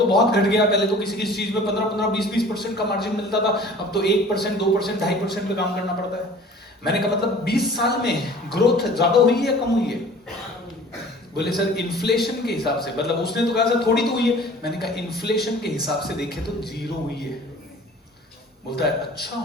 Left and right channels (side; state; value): both; normal; correlation 0.47